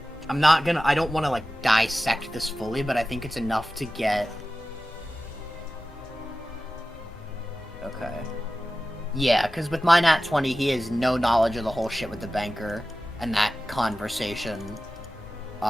don't want to, like, dissect this fully, but I think it's enough to get... Okay. Yeah, because with my nat 20, he has no knowledge of the whole shit with the banker and that conversation,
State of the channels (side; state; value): both; normal; correlation 0.95